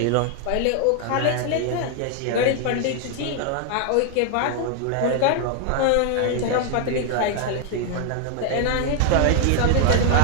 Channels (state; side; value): different; both; correlation 0.00